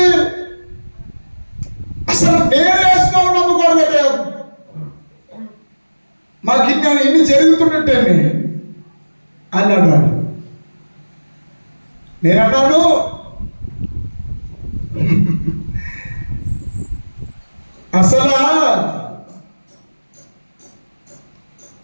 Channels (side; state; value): both; inverted; correlation -1.00